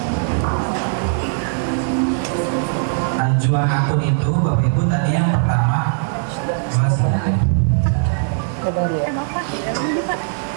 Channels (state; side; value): silent; left; digital silence